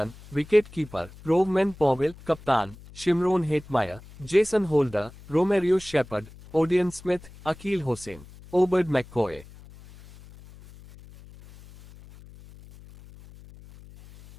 wicket keeper, Rovman Powell, कप्तान, Shimron Hetmyer, Jason Holder, Romario Shepherd, Odean Smith, Akeal Hosein, Obed McCoy.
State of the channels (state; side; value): noise; left; hum, 20 dB below the sound